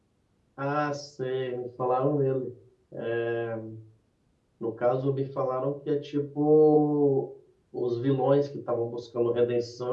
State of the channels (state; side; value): identical; both; correlation 1.00